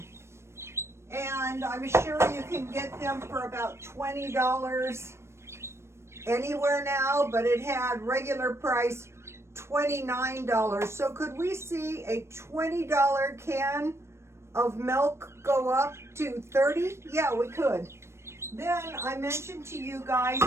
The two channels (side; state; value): left; late; 0.13 ms